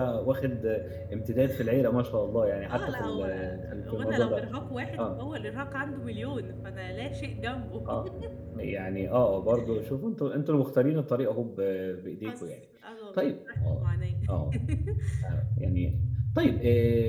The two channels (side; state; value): both; identical; correlation 1.00